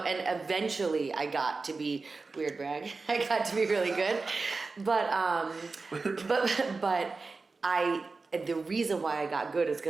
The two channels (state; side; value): quieter; left; 4.0 dB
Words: and eventually I got to be, weird brag, I got to be really good. But the reason why I got good is